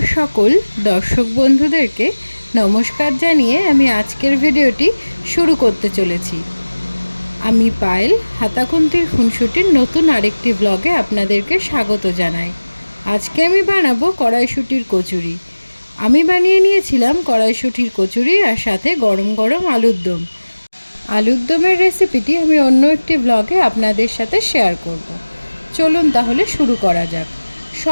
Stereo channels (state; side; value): inverted; both; correlation -1.00